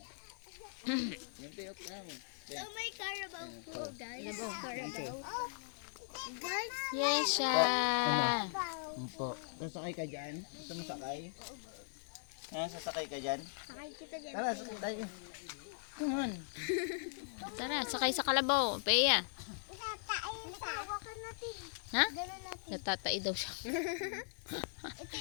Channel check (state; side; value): silent; right; digital silence